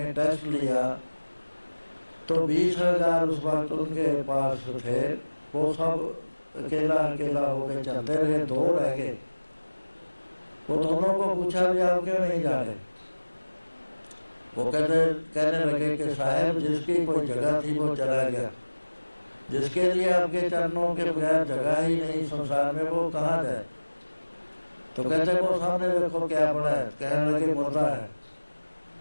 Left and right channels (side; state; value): both; inverted; correlation -1.00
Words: टेस्ट लिया तो 20,000 उस वक्त उनके पास थे। वो सब अकेला अकेला होकर चलते रहे, 2 रह गए। वो दोनों को पूछा भी आप क्यों नहीं जा रहे। वो कहने लगे कि साहब जिसकी कोई जगह थी वो चला गया, जिसके लिए आपके चरणों के बगैर जगह ही नहीं संसार में, वो कहाँ जाए। तो कहते वो सामने देखो क्या पड़ा है। कहने लगे मुर्दा है।